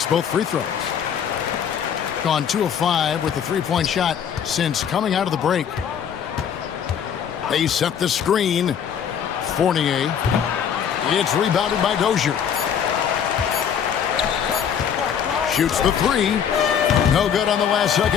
both free throws. Gone 2 of 5 with the three-point shot since coming out of the break. They set the screen. Fournier. It's rebounded by Dozier. Shoots the three. No good on the last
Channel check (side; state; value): right; quieter; 8.2 dB